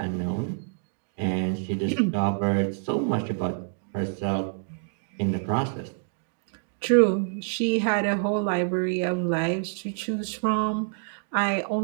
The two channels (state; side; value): silent; left; digital silence